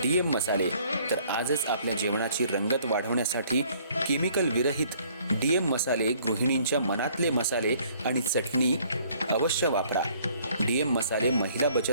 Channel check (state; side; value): inverted; both; correlation -0.60